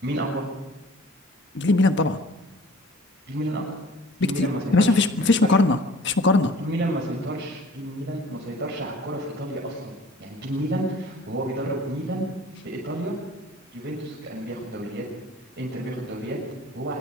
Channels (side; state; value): both; normal; correlation 0.49